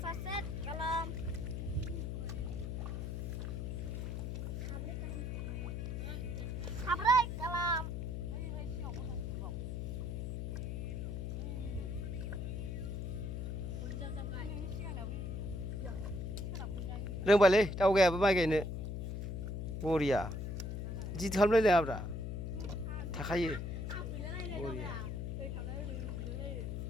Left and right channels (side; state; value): left; noise; hum, 3 dB below the sound